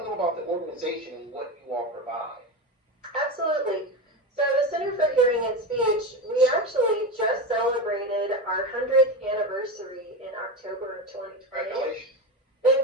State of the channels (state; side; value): normal; both; correlation 0.20